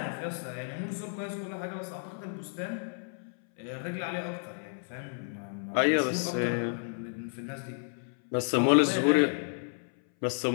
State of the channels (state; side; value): silent; right; 57 dB below the other